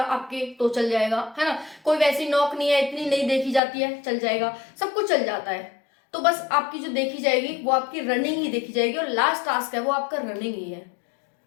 तो चल जाएगा, है ना, कोई वैसी नौक नहीं है, इतनी नहीं देखी जाती है, चल जाएगा, सब कुछ चल जाता है। तो बस आपकी जो देखी जाएगी वो आपकी रनिंग ही देखी जाएगी, और लास्ट टास्क है वो आपका रनिंग ही है,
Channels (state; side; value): drops out; right; at 3.6 s